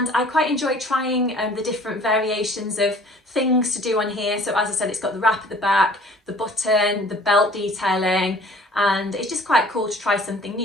I quite enjoy trying the different variations of things to do on here. So as I said, it's got the wrap at the back, the button, the belt detailing, and it's just quite cool to try something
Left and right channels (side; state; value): both; normal; correlation 0.51